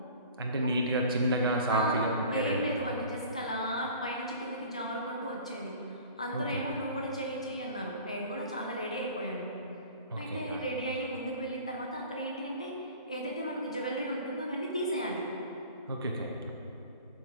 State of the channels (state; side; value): inverted; both; correlation -0.43